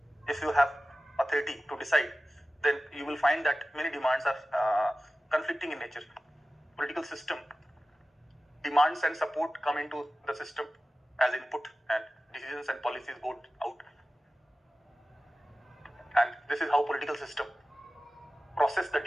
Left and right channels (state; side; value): normal; both; correlation 0.96